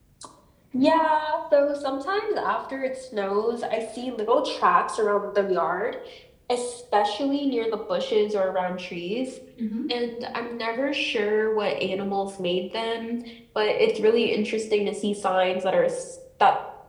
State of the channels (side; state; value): both; identical; correlation 1.00